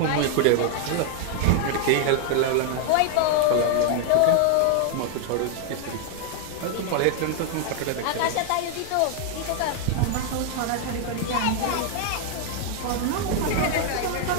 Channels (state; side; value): different; both; correlation 0.00